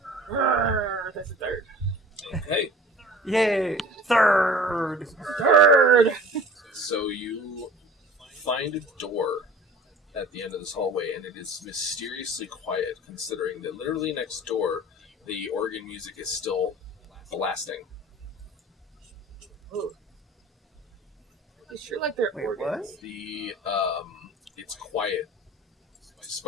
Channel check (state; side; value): normal; both; correlation 0.44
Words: That's a third. Okay. Yay! Third! So you find a door at the end of this hallway, and it is mysteriously quiet, considering that literally next door, the organ music is still blasting. Ooh. It's sure like they're Wait, organs. It's quiet,